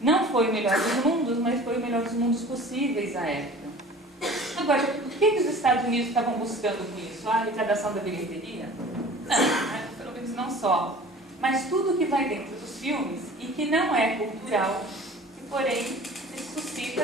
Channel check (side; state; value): both; normal; correlation 0.44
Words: Não foi o melhor dos mundos, mas foi o melhor dos mundos possíveis à época. Agora, o que os Estados Unidos estavam buscando com isso? A arrecadação da bilheteria? Não, pelo menos não só. Mas tudo que vai dentro dos filmes e que não é cultural, que porém